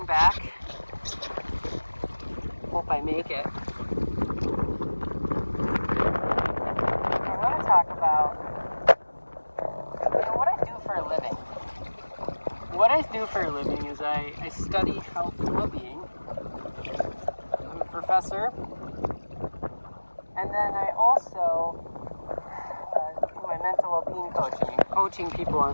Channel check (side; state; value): both; inverted; correlation -1.00